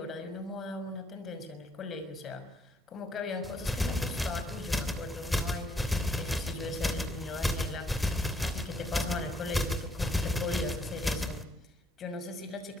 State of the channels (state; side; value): normal; both; correlation 0.71